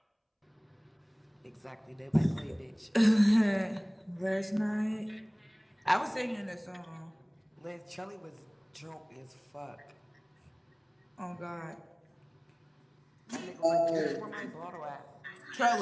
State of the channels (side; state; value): both; identical; correlation 1.00